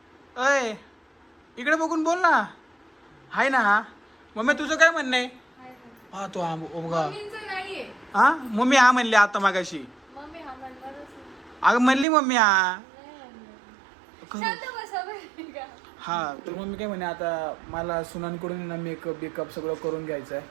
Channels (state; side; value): drops out; left; at 12.1 s